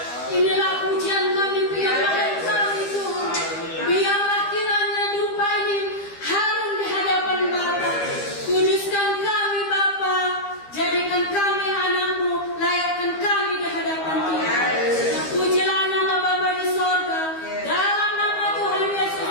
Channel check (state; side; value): late; right; 12 ms